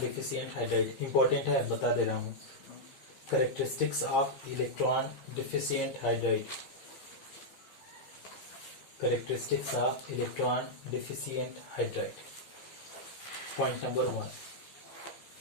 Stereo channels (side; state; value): right; late; 15 ms